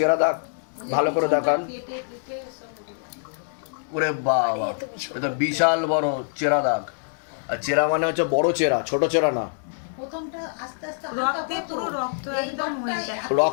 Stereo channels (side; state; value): right; silent; digital silence